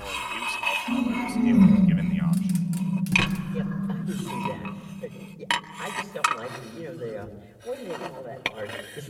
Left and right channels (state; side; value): identical; both; correlation 1.00